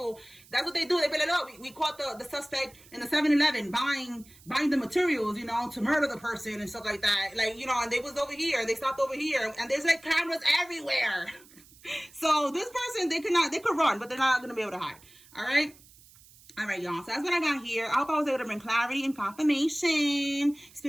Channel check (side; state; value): right; noise; hiss, 24 dB below the sound